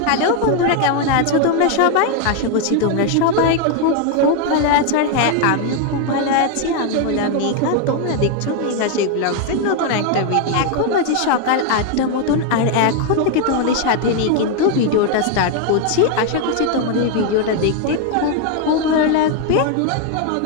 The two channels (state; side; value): different; both; correlation 0.01